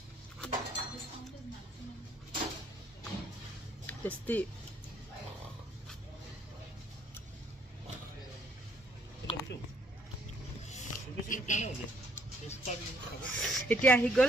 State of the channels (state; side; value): normal; both; correlation 0.66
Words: টেষ্টি এতিয়া আহি